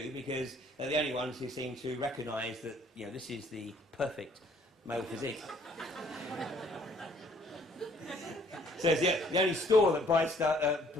because they're the only ones who seem to recognise that, you know, this is the perfect male physique. So it's the only store that buys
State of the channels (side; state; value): both; normal; correlation 0.61